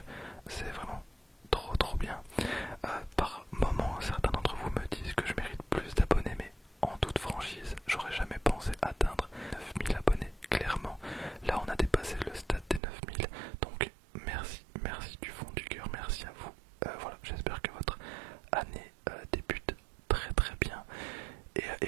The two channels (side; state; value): left; drops out; at 12.8 s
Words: c'est vraiment trop bien. Par moments, certains d'entre vous me disent que je mérite plus d'abonnés, mais en toute franchise, j'aurais jamais pensé atteindre 9000 abonnés, clairement. Là, on a dépassé le stade des 9000, donc merci du fond du cœur, merci à vous. Voilà, j'espère que votre année débute très bien.